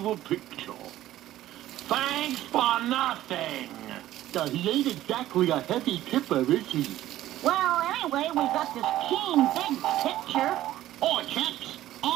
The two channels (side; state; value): left; quieter; 14.0 dB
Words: the picture. Thanks for nothing. He ain't exactly a heavy tipper, is he? Well, anyway, we got this keen, big picture. Oi, chaps.